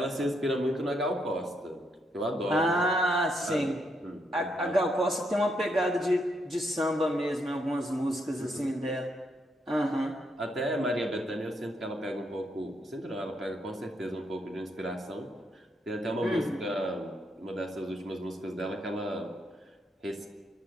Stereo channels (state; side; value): normal; both; correlation 0.77